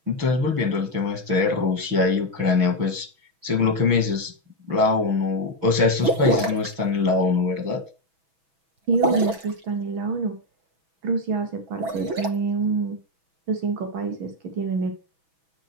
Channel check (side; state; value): left; late; 6.1 ms